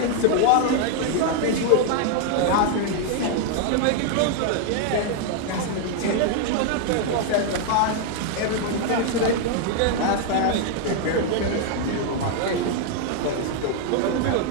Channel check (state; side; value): different; both; correlation 0.00